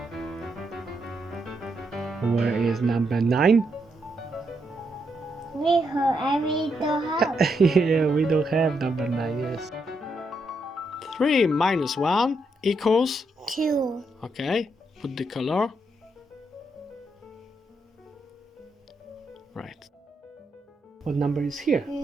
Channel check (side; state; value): both; normal; correlation 0.80